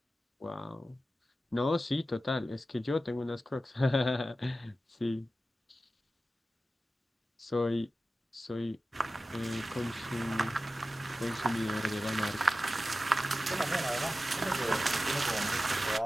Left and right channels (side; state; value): both; normal; correlation 0.94